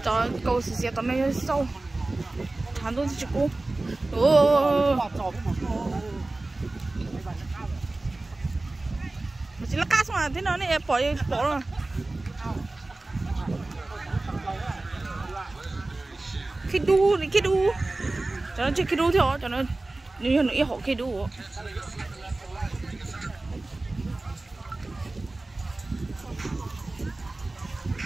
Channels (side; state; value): left; quieter; 3.0 dB